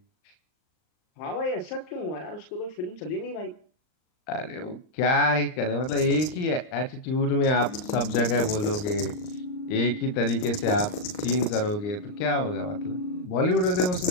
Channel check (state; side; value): late; right; 39 ms